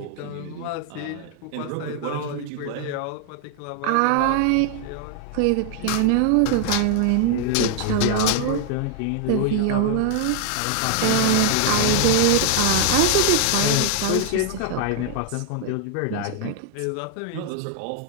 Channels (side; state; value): both; different; correlation 0.00